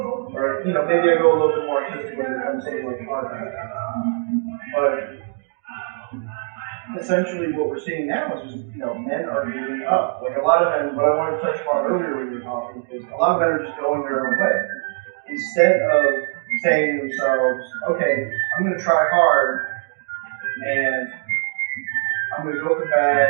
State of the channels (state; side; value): silent; left; 64 dB below the other